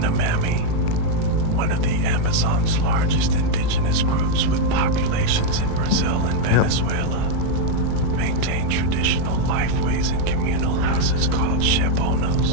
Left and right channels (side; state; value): both; different; correlation 0.00